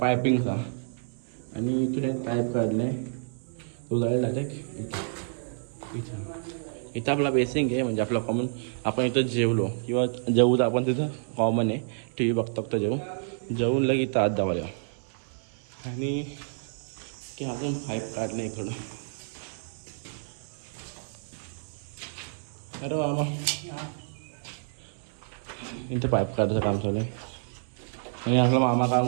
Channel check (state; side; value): silent; left; digital silence